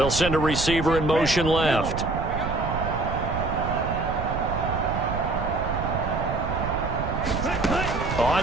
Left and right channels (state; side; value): noise; right; rumble, 4 dB below the sound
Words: send a receiver in motion left. On